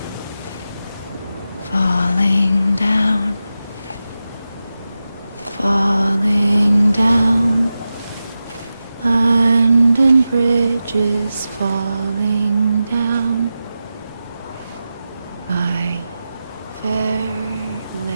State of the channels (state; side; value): inverted; both; correlation -0.92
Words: falling down, falling down. London Bridge is falling down, my fair